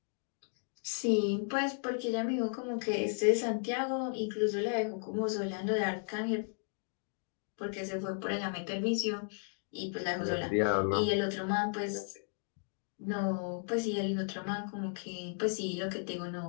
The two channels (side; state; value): right; silent; 55 dB below the other